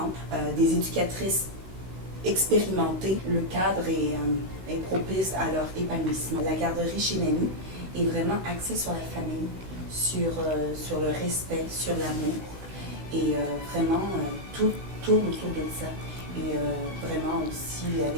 des éducatrices expérimentées. Le cadre est propice à leur épanouissement. La garderie chez Nani est vraiment axée sur la famille, sur le respect, sur l'amour et vraiment tout tourne autour de ça. Et vraiment aussi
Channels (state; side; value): late; left; 16 ms